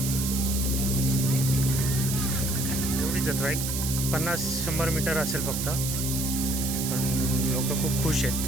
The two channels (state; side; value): noise; right; hiss, 3 dB below the sound